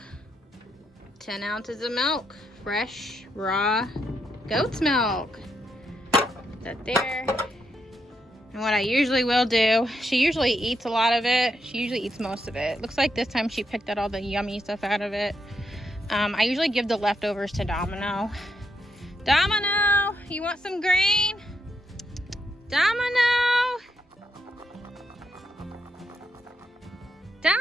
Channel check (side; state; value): both; normal; correlation 0.80